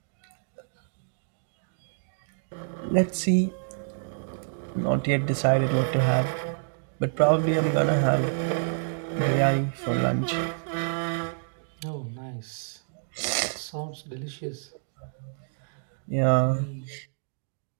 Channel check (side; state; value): left; silent; digital silence